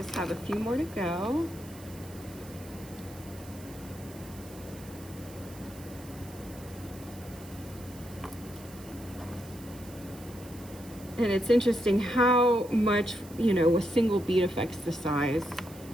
have a few more to go. And it's interesting how much, you know, a single bead affects the size,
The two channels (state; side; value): noise; right; hiss, 20 dB below the sound